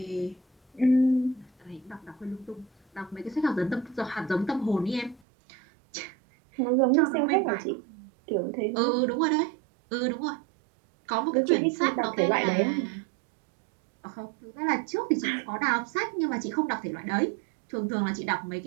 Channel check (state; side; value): drops out; left; at 5.2 s